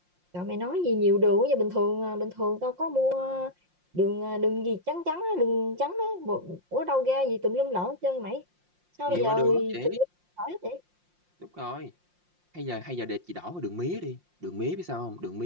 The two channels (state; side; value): late; left; 5.6 ms